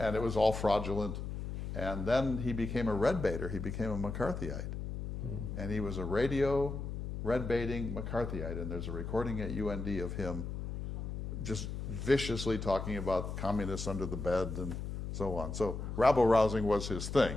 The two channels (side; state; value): left; noise; hum, 5 dB below the sound